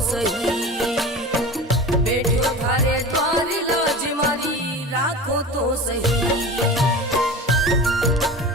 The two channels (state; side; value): normal; both; correlation 0.33